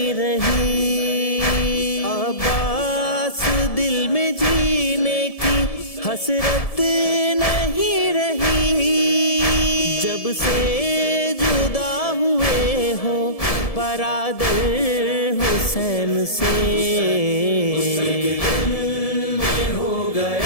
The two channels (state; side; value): late; right; 1.7 ms